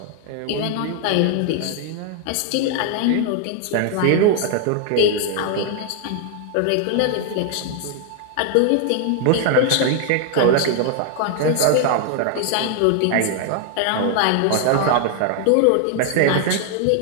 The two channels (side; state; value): both; different; correlation 0.00